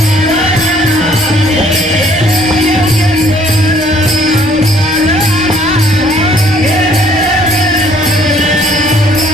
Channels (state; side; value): normal; both; correlation 0.61